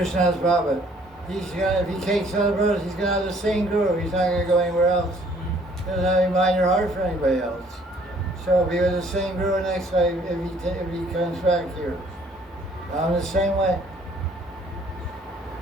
Baba. If he takes other brothers, he's going to have the same guru. He's not going to go anywhere else. He doesn't have any mind or heart for anybody else. So be with the same guru next life if he comes back here. I'm the same way.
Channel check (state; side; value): normal; both; correlation 0.59